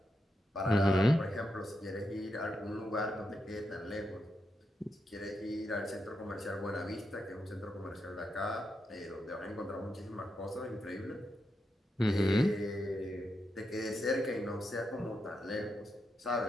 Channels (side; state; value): both; normal; correlation 0.84